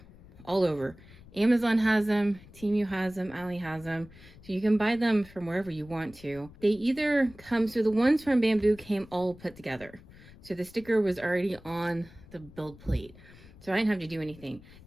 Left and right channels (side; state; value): left; noise; rumble, 21 dB below the sound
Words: all over. Amazon has them, Temu has them, Ali has them, so you can buy them from wherever you want to. They either come, so the ones from Bambu came all put together. So the sticker was already on the build plate, so I didn't have to do anything.